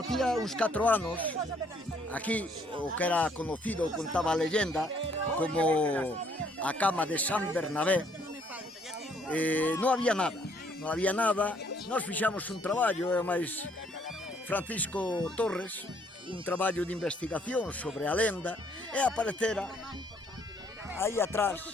uns 4 anos, aquí, o que era conocido, contaba a leyenda, como a cama de San Bernabé, non había nada. Non había nada, nós fixamos un traballo, e máis Francisco Torres, un traballo de investigación sobre a lenda, e aparecera aí atrás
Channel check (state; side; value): normal; both; correlation 0.65